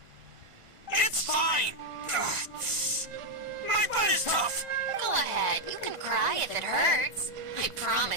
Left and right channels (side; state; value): left; late; 1.5 ms